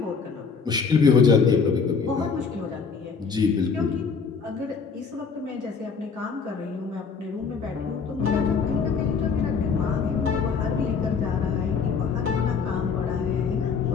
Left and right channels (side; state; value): right; quieter; 5.5 dB